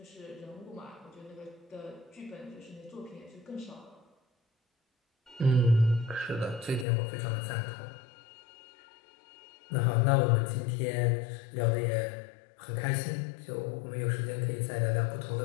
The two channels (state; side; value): drops out; right; at 6.9 s